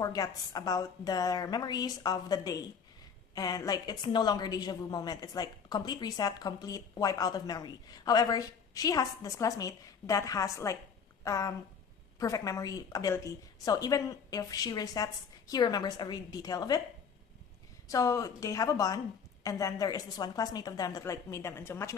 about their memories of the day, and like it's no longer deja vu moment. It's like complete reset, complete wipe out of memory. However, she has this classmate that has like perfect memory ability. So even if she resets, he remembers every detail of it. So they have a bond, and then there is this one classmate of them that like made them into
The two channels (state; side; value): quieter; right; 6.5 dB